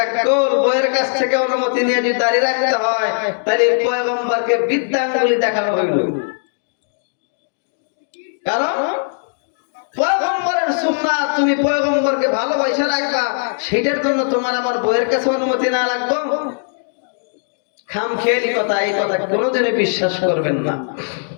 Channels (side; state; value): right; silent; digital silence